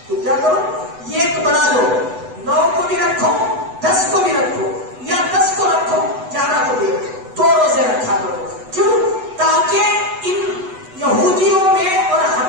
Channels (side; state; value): left; late; 8.0 ms